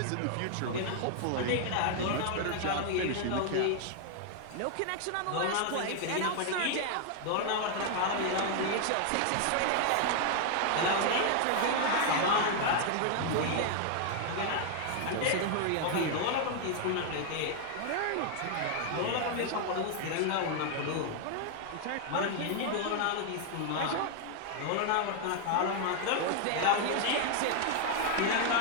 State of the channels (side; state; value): both; different; correlation 0.00